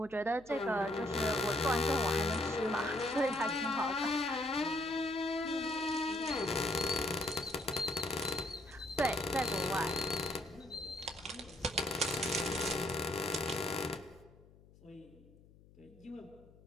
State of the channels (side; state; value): left; noise; hum, 25 dB below the sound